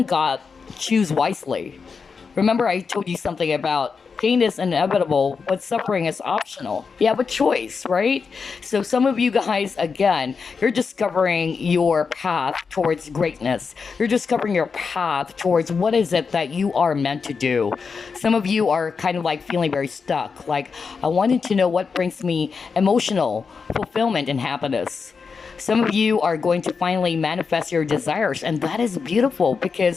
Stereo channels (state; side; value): quieter; right; 5.3 dB